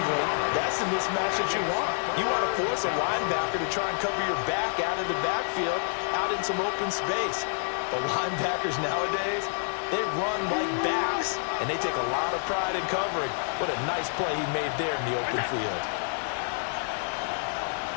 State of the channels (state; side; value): silent; right; 59 dB below the other